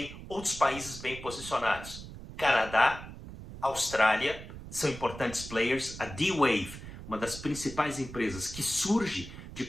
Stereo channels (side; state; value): right; noise; rumble, 12 dB below the sound